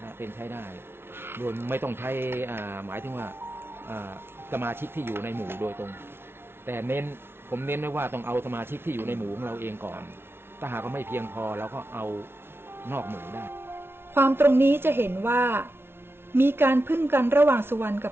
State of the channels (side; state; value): left; late; 0.11 ms